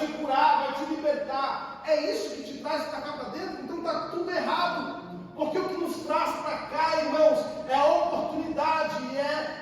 curar, vai te libertar. É isso que te traz para cá para dentro? Então está tudo errado. Porque o que nos traz para cá, irmãos, é a oportunidade,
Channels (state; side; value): identical; both; correlation 1.00